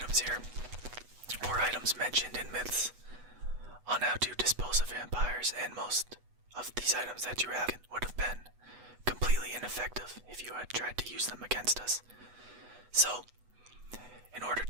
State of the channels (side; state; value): left; late; 8.1 ms